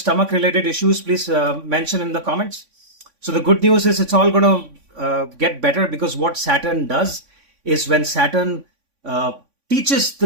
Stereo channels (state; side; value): late; left; 3.5 ms